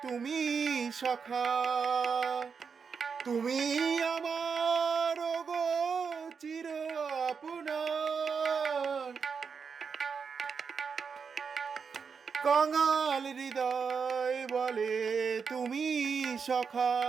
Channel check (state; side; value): quieter; left; 5.9 dB